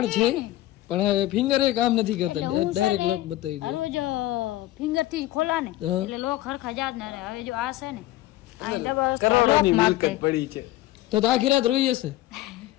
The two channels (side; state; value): right; quieter; 16.0 dB